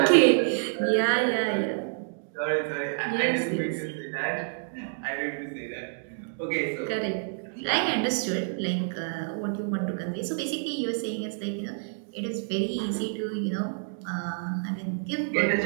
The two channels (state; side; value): silent; left; digital silence